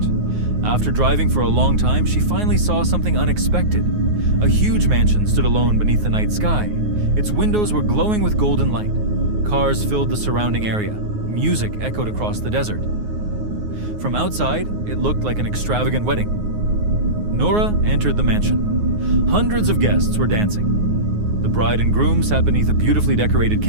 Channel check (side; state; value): left; late; 9.5 ms